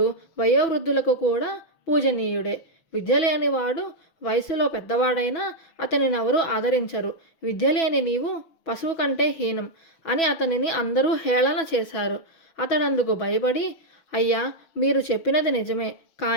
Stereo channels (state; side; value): late; right; 6.1 ms